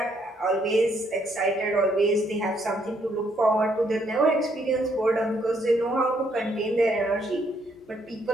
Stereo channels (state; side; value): normal; both; correlation 0.71